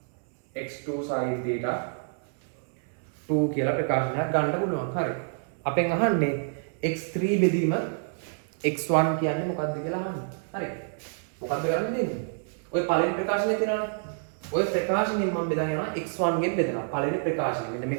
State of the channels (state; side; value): silent; left; 59 dB below the other